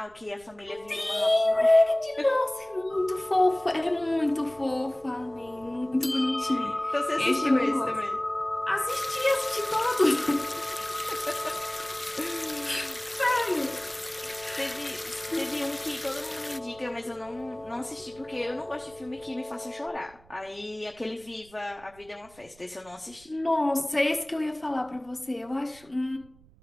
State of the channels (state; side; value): noise; right; rumble, 27 dB below the sound